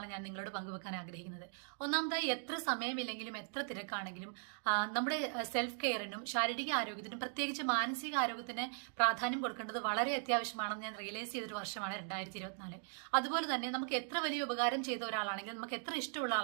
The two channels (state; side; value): silent; left; 52 dB below the other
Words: ഞാൻ നിങ്ങളോട് പങ്കുവെക്കാൻ ആഗ്രഹിക്കുന്നത്. ഒന്നാമതായി, എത്ര സമയമില്ലെങ്കിലും എത്ര തിരക്കാണെങ്കിലും നമ്മുടെ സെൽഫ് കെയറിനും ശാരീരിക ആരോഗ്യത്തിനും പ്രത്യേകിച്ച് മാനസിക ആരോഗ്യത്തിന് പ്രാധാന്യം കൊടുക്കേണ്ടത് വളരെ അത്യാവശ്യമാണെന്ന് ഞാൻ റിയലൈസ് ചെയ്തൊരു വർഷമാണ് 2024. അതുപോലെ തന്നെ നമുക്ക് എത്ര വലിയ ഉപകാരം ചെയ്ത ഒരാളാണെങ്കിലും നമുക്ക് എത്ര ഇഷ്ടമുള്ള